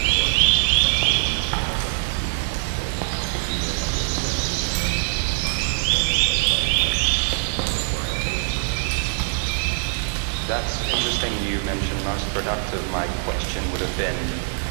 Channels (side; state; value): left; silent; digital silence